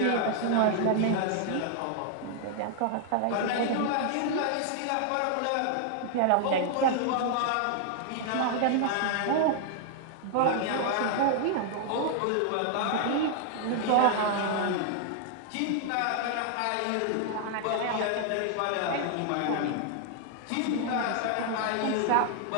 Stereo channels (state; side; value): different; both; correlation 0.00